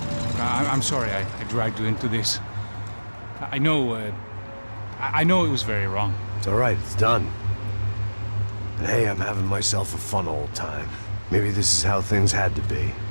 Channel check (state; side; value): inverted; both; correlation -1.00